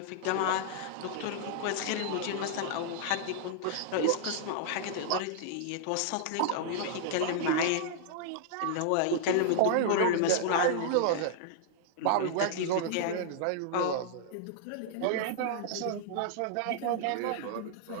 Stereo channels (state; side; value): different; both; correlation -0.01